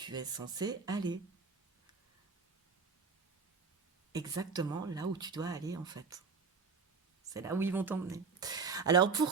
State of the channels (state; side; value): quieter; left; 5.0 dB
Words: es censé aller. Exactement là où tu dois aller en fait. C'est là où ils vont t'emmener. Alors